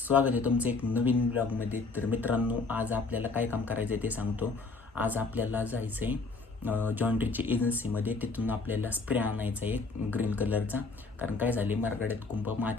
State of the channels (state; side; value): quieter; right; 3.9 dB